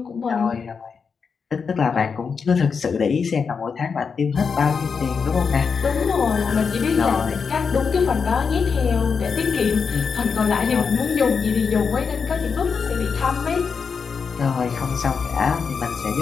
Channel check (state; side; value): quieter; right; 5.7 dB